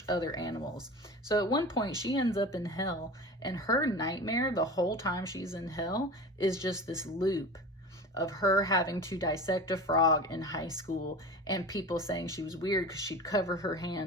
other animals. So at one point she ends up in hell, and her nightmare the whole time she's in hell is just this loop of her having to dissect a frog in high school, and people saying she was weird because she'd cover her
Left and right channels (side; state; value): both; normal; correlation 0.33